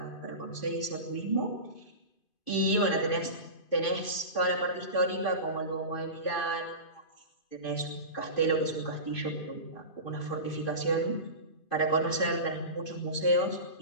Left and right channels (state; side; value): late; right; 2.5 ms